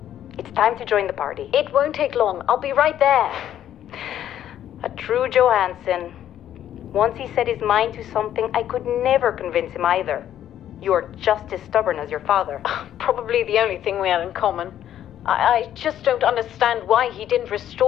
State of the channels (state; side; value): quieter; right; 11.1 dB